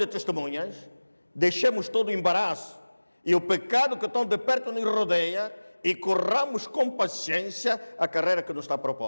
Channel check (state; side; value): inverted; both; correlation -1.00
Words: testemunhas, deixemos todo o embaraço e o pecado que tão de perto nos rodeia e corramos com paciência a carreira que nos está